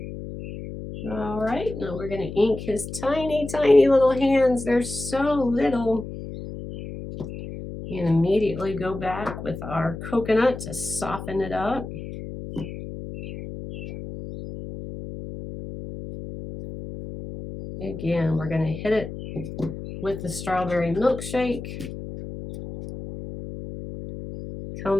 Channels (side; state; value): left; noise; hum, 9 dB below the sound